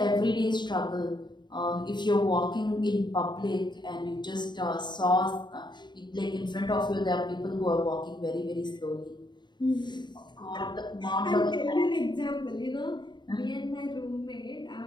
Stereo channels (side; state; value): right; late; 0.22 ms